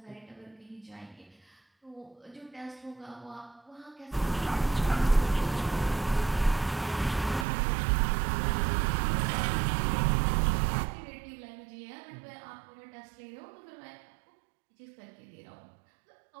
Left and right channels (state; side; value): drops out; left; at 7.5 s